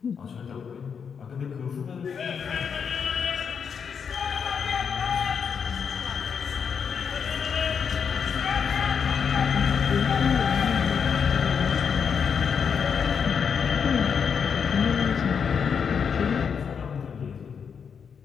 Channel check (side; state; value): right; quieter; 6.7 dB